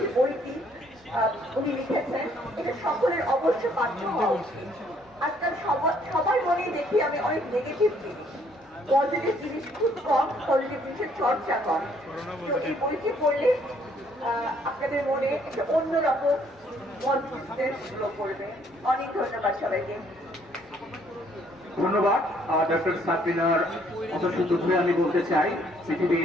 যে বইটি উনি লিখেছেন, এটা সকলের অবশ্য পাঠ্য হওয়া উচিত। আজকাল সবার মনে দেখি আমি অনেক নেগেটিভ জিনিস, পজিটিভ জিনিস খুব কম, পজিটিভ জিনিসের চর্চা কম। তো এই বইটি পড়লে আপনাদের মনে একটা অন্যরকম পজিটিভনেস গ্রো করবে। অনেক ধন্যবাদ সবাইকে। ধন্যবাদ ডক্টর সাবরিনার কথা শুধু আমি বলতে চাই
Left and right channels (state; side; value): normal; both; correlation 0.65